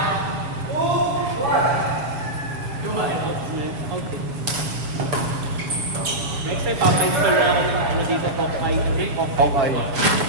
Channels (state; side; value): late; left; 6.9 ms